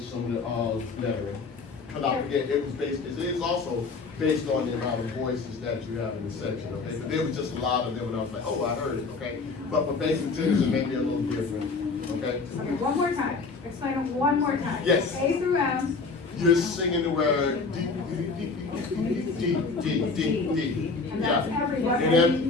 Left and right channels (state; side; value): quieter; right; 4.3 dB